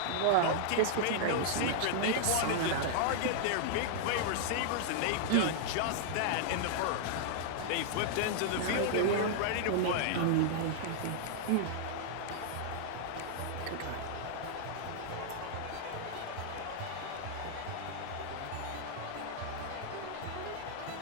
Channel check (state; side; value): different; both; correlation -0.01